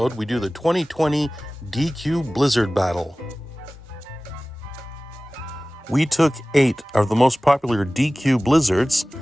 we do the 2020 DQ Blizzard Battle. We took 8 of the most popular DQ Blizzards,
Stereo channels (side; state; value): both; normal; correlation 0.98